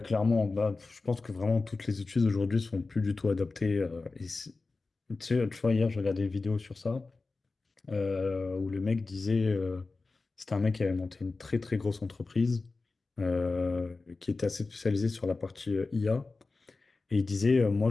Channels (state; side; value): quieter; right; 3.7 dB